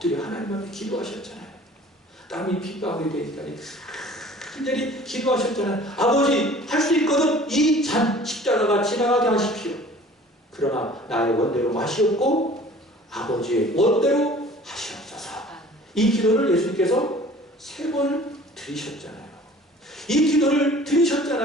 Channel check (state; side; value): normal; both; correlation 0.48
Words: 하나님 앞에 기도하셨잖아요. 땀이 핏방울이 되니까 간절히 기도하셨잖아요. 아버지, 할 수 있거든 이 잔 십자가가 지나가게 하십시오. 그러나 나의 원대로 마시옵고 아버지의 원대로 하시옵소서. 이 기도를 예수님께서 3번 드리셨잖아요. 이 기도를